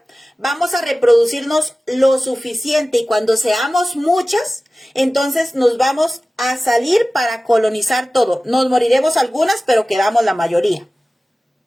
vamos a reproducirnos lo suficiente y cuando seamos muchas, entonces nos vamos a salir para colonizar todo. Nos moriremos algunas, pero quedamos la mayoría.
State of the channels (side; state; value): both; normal; correlation 0.96